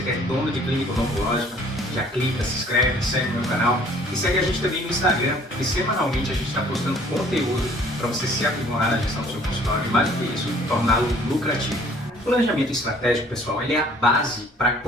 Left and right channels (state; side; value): normal; both; correlation 0.56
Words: é dono de clínica odontológica, já clica, se inscreve, segue o meu canal e segue a gente também no Instagram, porque semanalmente a gente está postando conteúdo para você se aprimorar na gestão do seu consultório e mais do que isso, torná-lo lucrativo. O planejamento estratégico, pessoal, ele é a base para